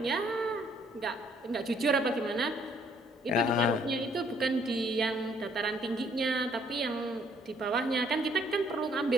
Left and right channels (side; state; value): both; normal; correlation 0.64